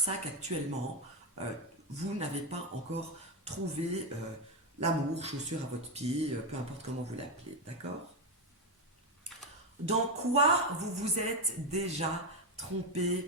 qu'actuellement, vous n'avez pas encore trouvé l'amour, chaussure à votre pied, peu importe comment vous l'appelez. D'accord? Dans quoi vous vous êtes déjà trompé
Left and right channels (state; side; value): normal; both; correlation 0.08